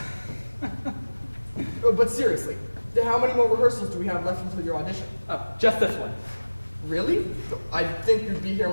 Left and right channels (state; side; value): inverted; both; correlation -1.00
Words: But seriously, how many more rehearsals do we have left until your audition? Oh, just this one. Really? I think you'd be here